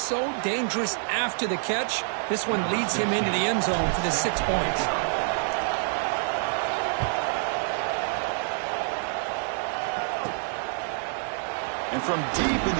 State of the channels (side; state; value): left; silent; digital silence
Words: dangerous after the catch. This one leads him into the end zone for the 6 points. And from deep in